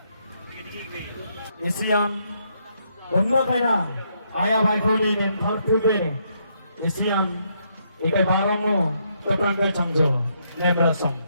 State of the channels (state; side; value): inverted; both; correlation -0.75